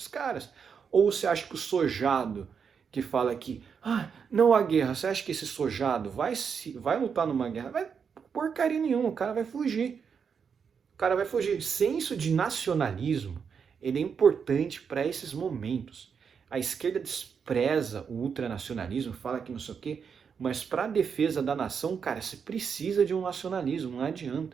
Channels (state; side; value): quieter; left; 6.5 dB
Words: caras. Ou você acha que o sojado que fala aqui, não há guerra, você acha que esse sojado vai lutar numa guerra? Vai porcaria nenhuma, o cara vai fugir. O cara vai fugir. Senso de nacionalismo, ele é importante para esses momentos. A esquerda despreza o ultranacionalismo, fala que não sei o quê, mas para a defesa da nação, cara, você precisa de um nacionalismo, não